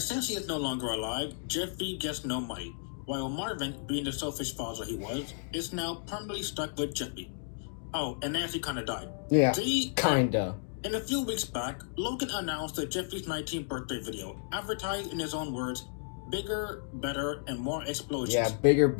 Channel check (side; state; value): right; silent; digital silence